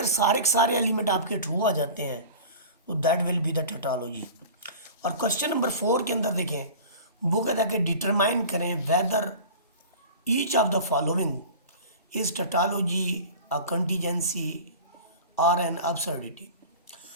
सारे के सारे एलिमेंट आपके ट्रू आ जाते हैं तो that will be the tautology. और क्वेश्चन नंबर 4 के अंदर देखें, वो कहता है कि डिटरमाइन करें whether each of the following is tautology a contingency और एन अब्सर्डिटी।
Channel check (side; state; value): both; inverted; correlation -0.37